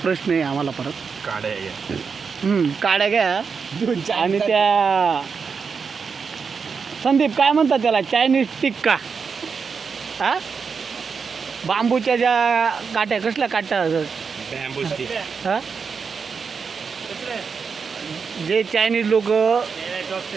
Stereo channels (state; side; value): quieter; left; 5.6 dB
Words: प्रश्न आहे आम्हाला परत. काड्या घ्या. काड्या घ्या आणि त्या संदीप काय म्हणतात त्याला चायनीज टिक्का हा बांबूच्या ज्या काट्या कसल्या काट्या बॅम्बू स्टिक. हा जे चायनीज लोक